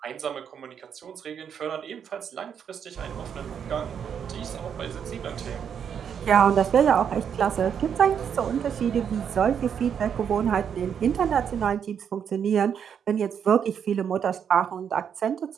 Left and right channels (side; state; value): left; quieter; 7.9 dB